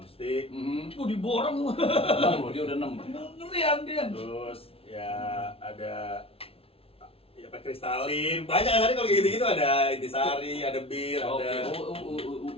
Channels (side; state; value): right; late; 0.27 ms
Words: Diborong. 6 loh, dia udah 6. Ngerian dia. Terus ya ada kristalin, banyak kan kalau kayak gitu-gitu, ada intisari, ada bir, ada